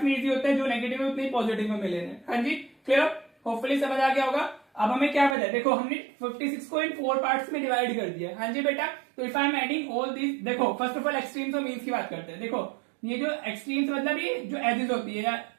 में इजी होता है, जो नेगेटिव में उतने पॉजिटिव में मिले हैं। हाँ जी, क्लियर, होपफुली समझ आ गया होगा। अब हमें क्या पता है, देखो हमने 56 को इन 4 पार्ट्स में डिवाइड कर दिया। हाँ जी बेटा, तो if I am adding all this, देखो फर्स्ट ऑफ ऑल एक्सट्रीम्स और मीन्स की बात करते हैं। देखो ये जो एक्सट्रीम्स मतलब ये जो एजेस होती है,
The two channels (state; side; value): drops out; left; at 5.4 s